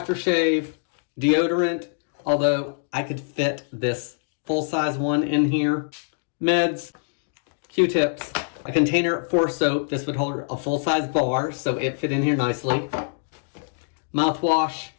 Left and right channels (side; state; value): right; silent; digital silence